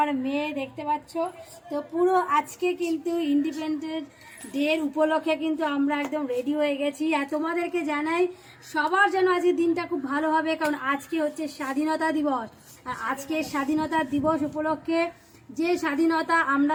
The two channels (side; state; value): both; identical; correlation 1.00